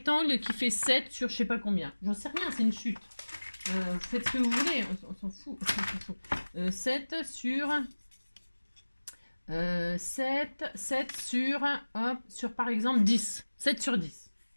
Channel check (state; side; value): inverted; both; correlation -1.00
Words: qui fait 7 sur je sais pas combien. J'en sais rien, c'est une chute. Vous faites ce que vous voulez, on s'en fout. 7 sur... 7 sur, hop, sur par exemple 10. 7 sur 10.